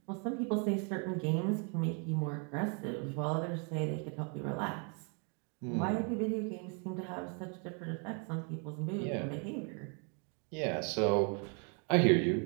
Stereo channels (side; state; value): left; quieter; 37.9 dB